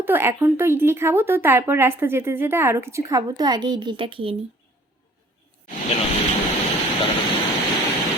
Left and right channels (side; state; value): both; normal; correlation 0.54